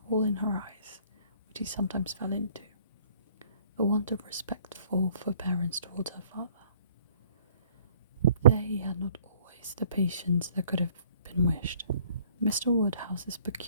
all in her eyes, which he sometimes fell into, the want of respectful forbearance towards her father. There he had not always the patience that could have been wished. Mr. Woodhouse's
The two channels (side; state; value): both; inverted; correlation -0.58